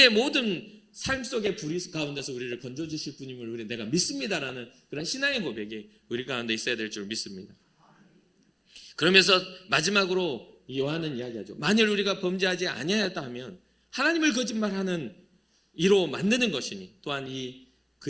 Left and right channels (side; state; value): both; identical; correlation 1.00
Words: 모든 삶 속의 불의 가운데서 우리를 건져주실 분임을 내가 믿습니다라는 그런 신앙의 고백이 우리 가운데 있어야 될 줄 믿습니다. 그러면서 마지막으로 요한은 이야기하죠. 만일 우리가 범죄하지 아니하였다 하면 하나님을 거짓말하는 이로 만드는 것이니 또한